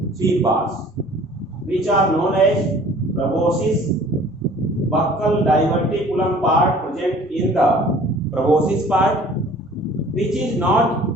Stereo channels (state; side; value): normal; both; correlation 0.50